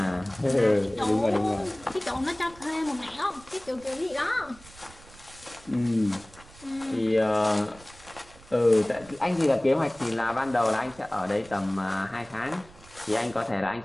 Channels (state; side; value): noise; right; rumble, 22 dB below the sound